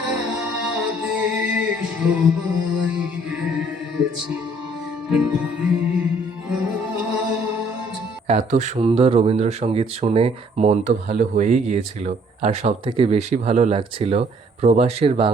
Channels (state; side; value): normal; both; correlation 0.62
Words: সবাই গেছে ভুলে আজ। এত সুন্দর রবীন্দ্রসঙ্গীত শুনে মন তো ভালো হয়েই গিয়েছিল, আর সবথেকে বেশি ভালো লাগছিল প্রবাসের